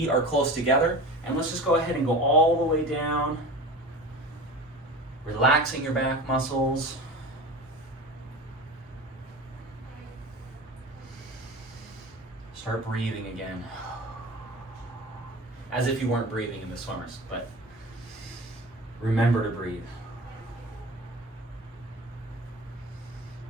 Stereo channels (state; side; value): normal; both; correlation 0.34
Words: are close together. And let's just go ahead and go all the way down. Relaxing your back muscles. Start breathing again. As if you weren't breathing in the swimmers, but remember to breathe.